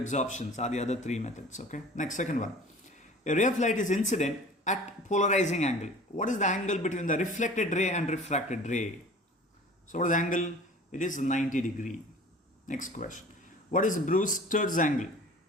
are the other 3 methods. Okay. Next, second one. A ray of light is incident at polarizing angle. What is the angle between the reflected ray and refracted ray? So what is the angle? It is 90 degree. Next question. What is Brewster's angle?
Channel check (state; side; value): normal; both; correlation 0.44